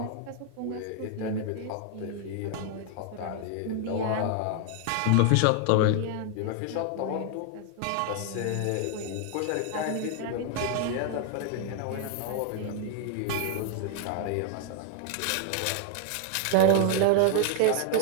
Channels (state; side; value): different; both; correlation 0.00